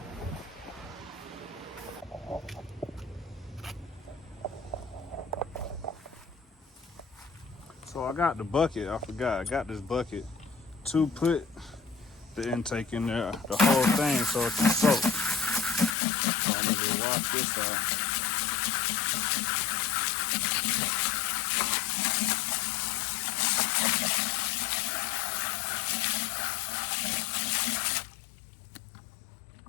So I got the bucket. I forgot. I got this bucket to put the intake in there, the whole thing, so it can soak. So I'm gonna wash this out.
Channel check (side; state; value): right; drops out; at 16.0 s